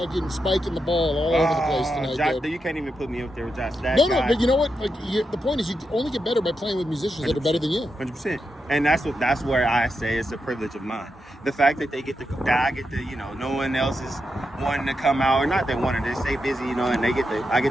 spiking the ball all over the place tonight. Josh, you can't even put me up there with Josh. No, but you know what? The point is, you only get better by playing with musicians that are better than you. 100%. And that's where I say it's a privilege of mine. The fact that I get to, no one else is wanting to come out, or not they wanted to stay busy, and I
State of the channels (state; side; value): normal; both; correlation 0.86